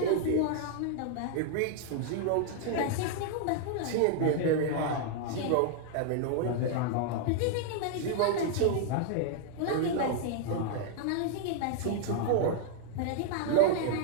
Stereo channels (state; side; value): different; both; correlation 0.00